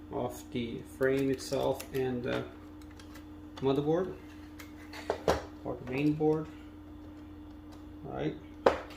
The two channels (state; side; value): identical; both; correlation 1.00